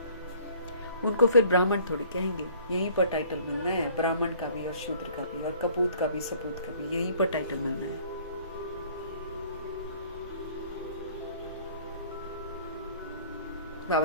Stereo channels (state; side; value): inverted; both; correlation -0.54